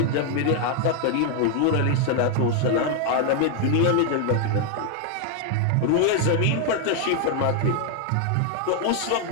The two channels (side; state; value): both; different; correlation 0.00